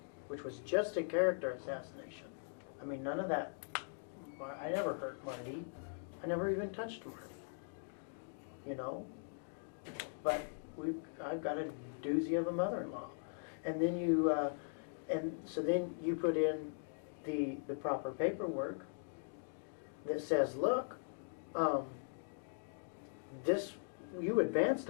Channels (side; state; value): right; silent; digital silence